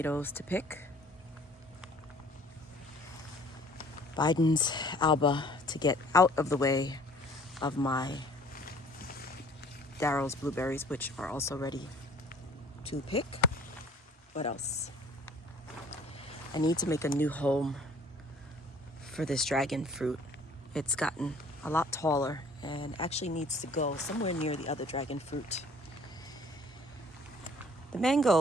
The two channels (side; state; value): both; normal; correlation 0.54